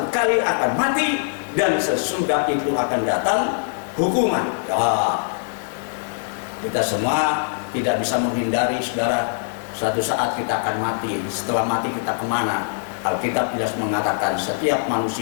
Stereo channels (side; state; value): right; silent; digital silence